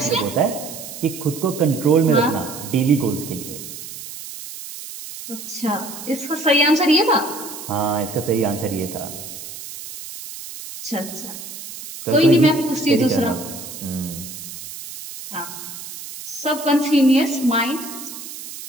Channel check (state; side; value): noise; right; hiss, 11 dB below the sound